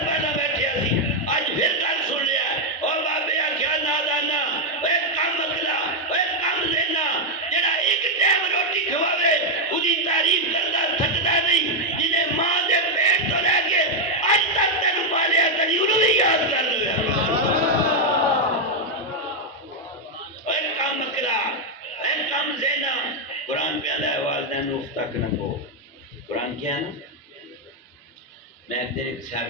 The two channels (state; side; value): normal; both; correlation 0.01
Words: پہلا بیٹھے سی آج پھر گل سن لیا او بابے کیا نادانا اے کم اکلا اے کم لینا جڑا ایک ٹائم روٹی کھواوے اودی تعریف کرتا تھکدا نہیں جنہیں ماں دے پیٹ تو لے کے اج تک تینو پالیا کدی انہوں بھی یاد کر لو اے کم اکلا اے کم زینا قرآن پہ آدھا ہے والدین اف تک نہ کو قرآن کیا ہے نا میں ایک دن ایک صاحب